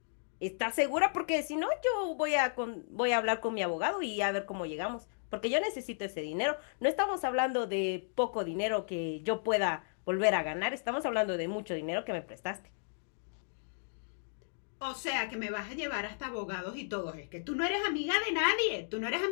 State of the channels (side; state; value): right; silent; digital silence